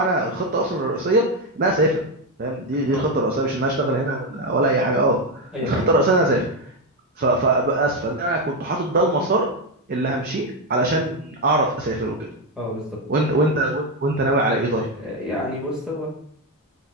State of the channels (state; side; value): normal; both; correlation 0.07